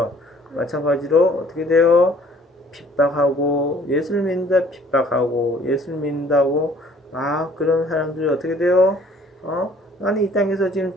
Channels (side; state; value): both; normal; correlation 0.56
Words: 마찬가지로 어떻게 돼요? 핍박하고 예수를 믿는다 핍박하고 예수를 믿는다고 그런 사람들이 어떻게 돼요? 나는 이 땅에서 지금